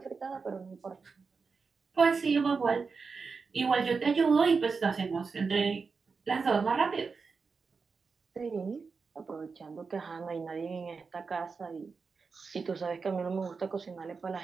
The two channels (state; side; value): quieter; left; 4.9 dB